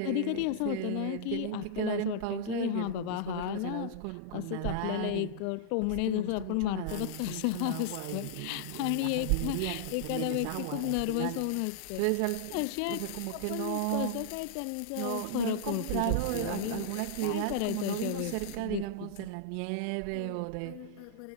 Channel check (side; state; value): both; different; correlation -0.01